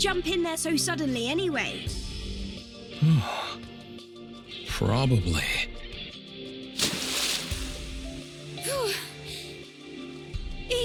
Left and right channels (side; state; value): both; identical; correlation 1.00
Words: in there so suddenly anyway? Probably.